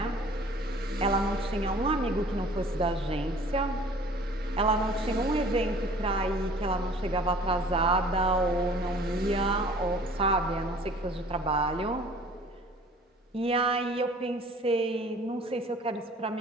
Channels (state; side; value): normal; both; correlation 0.50